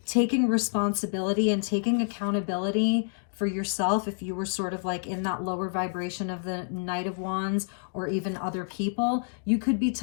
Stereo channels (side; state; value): right; silent; digital silence